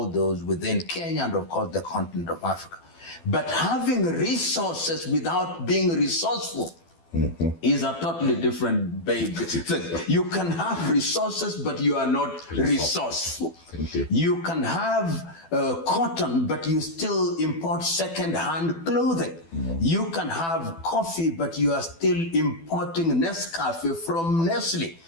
those within Kenya and, of course, the continent of Africa. But having resources without being resourceful is a totally different thing. You can have resources, but you are not resourceful. You can have cotton, but you still import second-hand clothing. You can have coffee, but you are still importing Nescafe from Nestle.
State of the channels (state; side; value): late; right; 12 ms